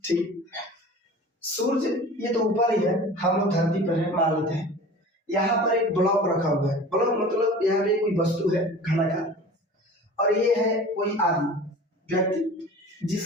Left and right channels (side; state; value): both; normal; correlation 0.40